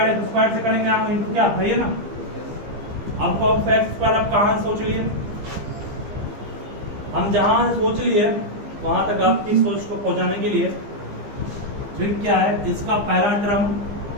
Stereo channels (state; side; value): late; left; 15 ms